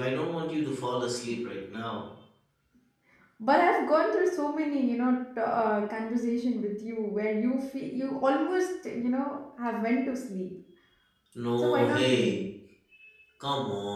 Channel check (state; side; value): identical; both; correlation 1.00